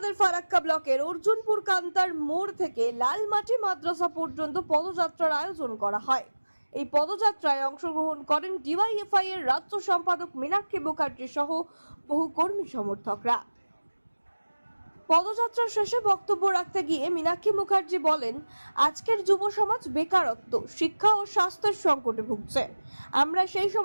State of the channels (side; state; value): both; inverted; correlation -1.00